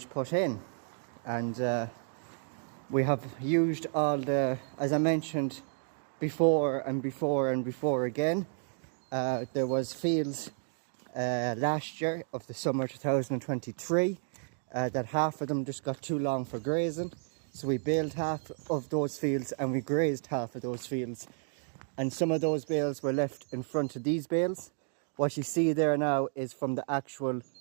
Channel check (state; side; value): silent; left; 57 dB below the other